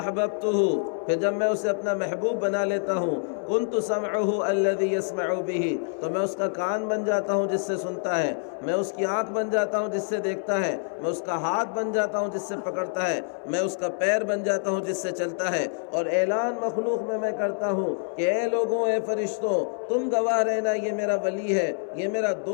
پھر جب میں اسے اپنا محبوب بنا لیتا ہوں، كُنْتُ سَمْعُهُ الَّذِي يَسْمَعُ بِهِ، تو میں اس کا کان بن جاتا ہوں جس سے سنتا ہے، میں اس کی آنکھ بن جاتا ہوں جس سے دیکھتا ہے، میں اس کا ہاتھ بن جاتا ہوں جس سے پکڑتا ہے، میں اس کا پیر بن جاتا ہوں جس سے چلتا ہے۔ اور اعلان مخلوق میں کرتا ہوں کہ اے لوگوں، اے فرشتوں، تم گواہ رہنا یہ میرا ولی ہے، یہ میرا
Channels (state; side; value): silent; right; digital silence